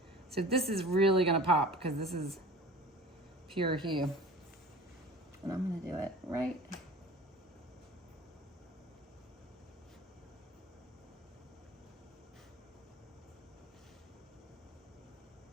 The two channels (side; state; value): both; normal; correlation 0.41